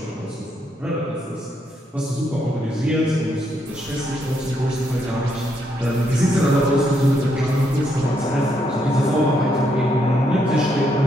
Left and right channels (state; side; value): normal; both; correlation 0.76